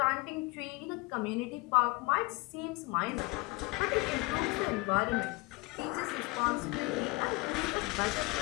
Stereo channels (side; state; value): right; quieter; 24.2 dB